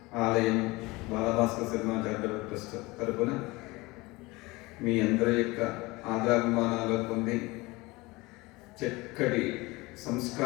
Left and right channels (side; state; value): right; quieter; 22.5 dB